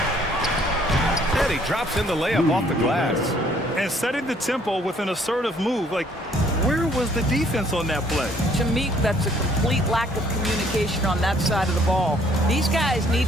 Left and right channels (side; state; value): both; normal; correlation 0.62